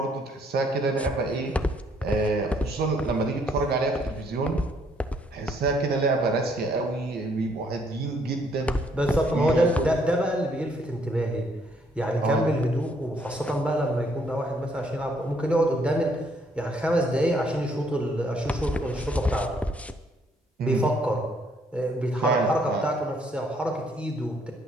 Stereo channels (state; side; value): normal; both; correlation 0.68